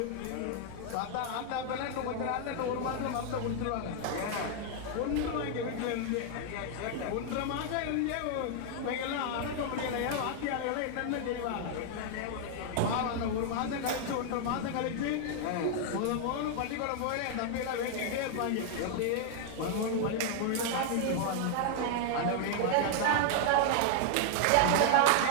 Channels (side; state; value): both; different; correlation 0.00